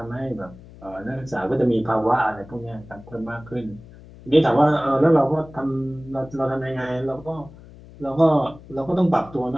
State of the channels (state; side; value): noise; left; hum, 20 dB below the sound